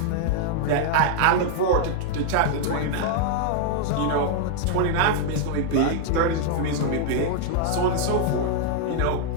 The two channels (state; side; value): different; both; correlation 0.00